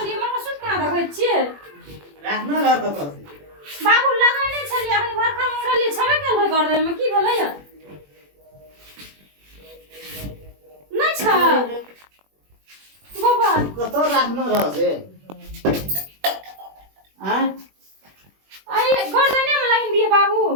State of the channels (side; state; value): left; late; 21 ms